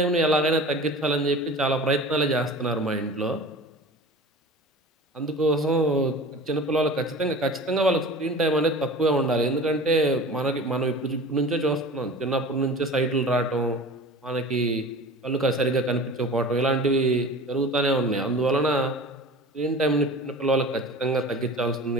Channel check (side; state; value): both; normal; correlation 0.38